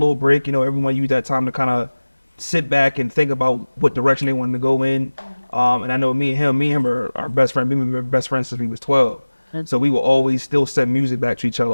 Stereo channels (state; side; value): inverted; both; correlation -1.00